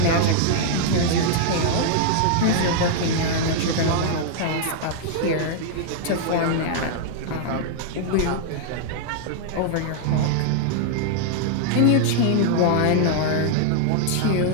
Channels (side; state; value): both; different; correlation -0.01